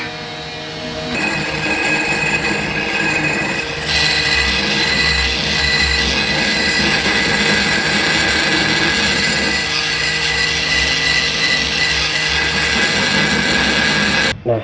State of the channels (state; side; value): identical; both; correlation 1.00